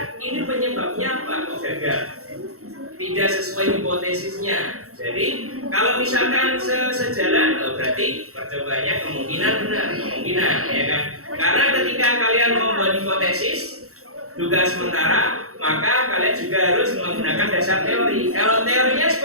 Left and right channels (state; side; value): late; left; 0.64 ms